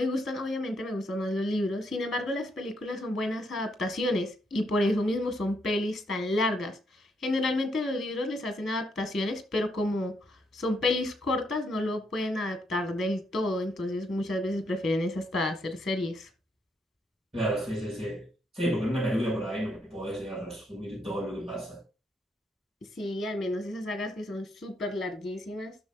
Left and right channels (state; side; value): normal; both; correlation 0.76